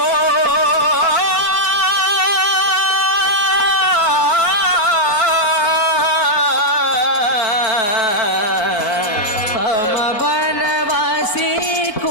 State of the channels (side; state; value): right; late; 4.6 ms